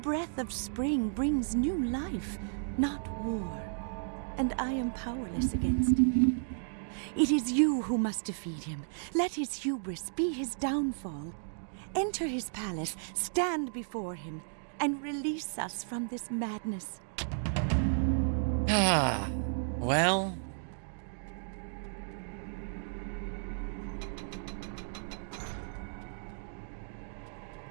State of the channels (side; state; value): left; silent; digital silence